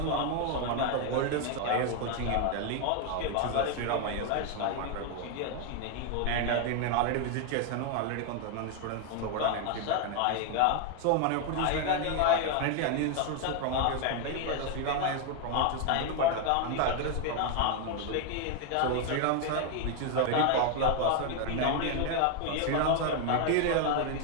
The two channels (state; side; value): different; both; correlation 0.01